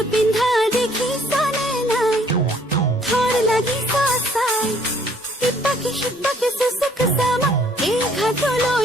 পিন্ধা দেখিছানে নাই থৰ লাগি চাই ইপাকে সিপাকে সুচুক চামা এই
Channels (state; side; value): normal; both; correlation 0.62